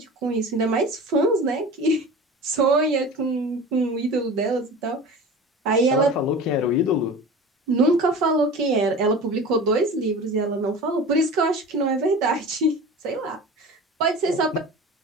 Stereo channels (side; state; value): both; normal; correlation 0.36